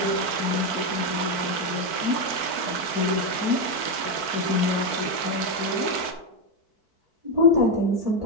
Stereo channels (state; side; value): late; left; 4.5 ms